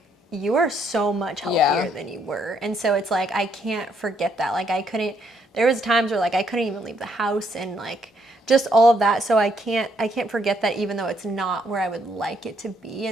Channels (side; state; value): both; normal; correlation 0.72